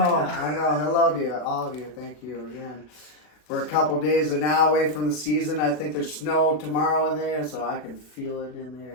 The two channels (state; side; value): late; right; 39 ms